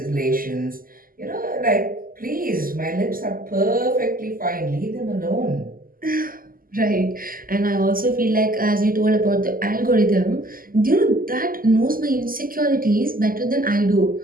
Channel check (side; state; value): left; late; 0.41 ms